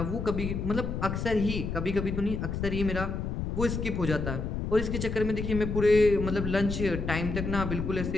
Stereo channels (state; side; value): noise; left; rumble, 3 dB below the sound